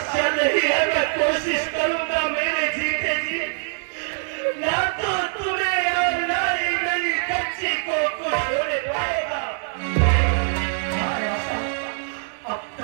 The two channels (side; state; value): left; silent; digital silence